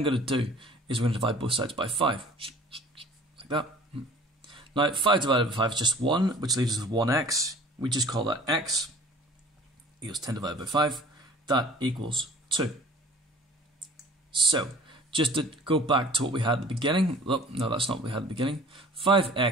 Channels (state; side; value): normal; both; correlation 0.48